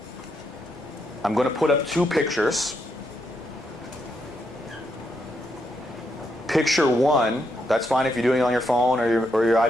I'm going to put up 2 pictures. Picture 1, that's fine if you're doing it on your phone or your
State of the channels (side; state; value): both; normal; correlation 0.79